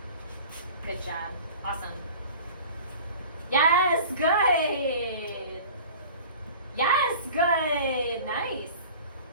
Good job. Awesome. Yes, good. Yes, good. Nice.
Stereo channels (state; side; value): inverted; both; correlation -0.42